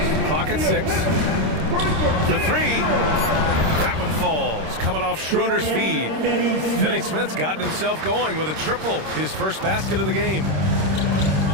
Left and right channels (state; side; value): late; left; 26 ms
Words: Clock at 6. For 3. That one falls, coming off Schroeder's feed. Finney Smith's gotten himself going with a triple, his first basket of the game.